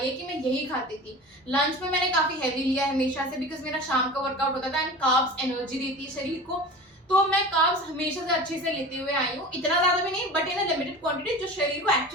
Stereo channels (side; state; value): both; normal; correlation 0.35